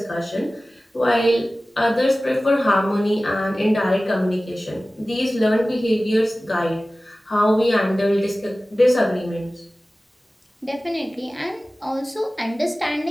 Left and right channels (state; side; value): normal; both; correlation 0.97